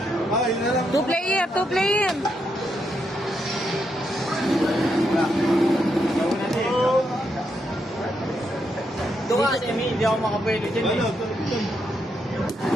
Ay, na lang. 2 player, 2 player. Doon ka, Semi, hindi ako makapwede dyan eh. Ano?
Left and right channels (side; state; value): both; normal; correlation 0.80